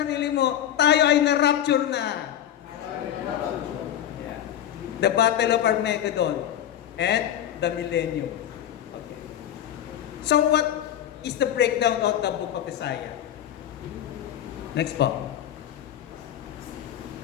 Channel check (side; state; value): right; quieter; 11.0 dB